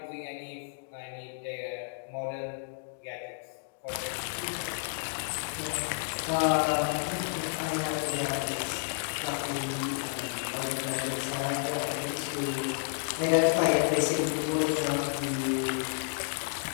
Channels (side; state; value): right; silent; digital silence